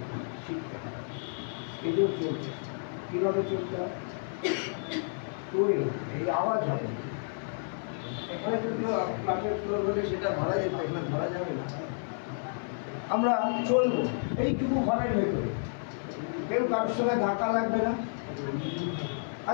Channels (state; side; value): silent; right; 57 dB below the other